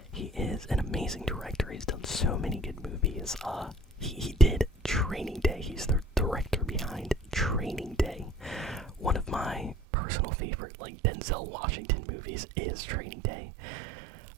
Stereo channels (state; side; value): drops out; left; at 9.8 s